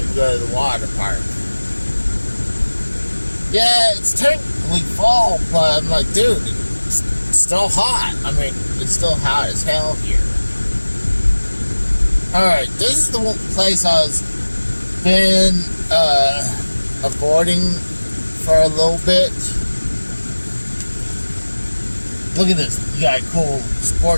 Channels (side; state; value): both; inverted; correlation -1.00